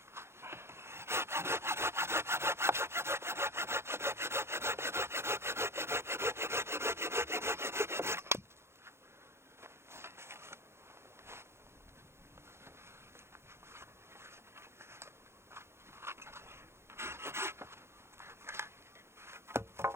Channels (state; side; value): late; left; 0.12 ms